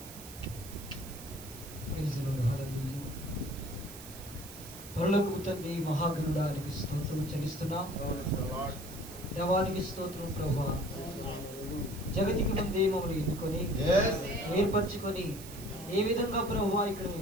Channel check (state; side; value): noise; right; hiss, 14 dB below the sound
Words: తండ్రి మహాగణుడానికి స్తోత్రం చెల్లిస్తున్నాం. దేవానికి స్తోత్రం ప్రభువా. జగతికి ముందే మమ్మల్ని ఎన్నుకొని ఏర్పరచుకొని ఏ విధంగా ప్రభువా ఇక్కడ మీ